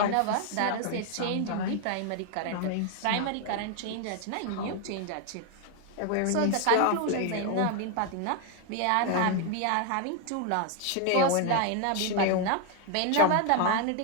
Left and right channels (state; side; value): different; both; correlation 0.01